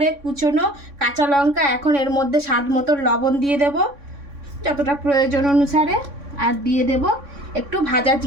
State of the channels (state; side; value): late; left; 3.6 ms